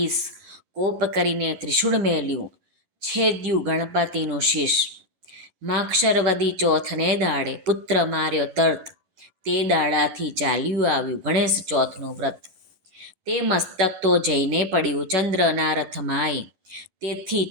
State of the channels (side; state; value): left; late; 10 ms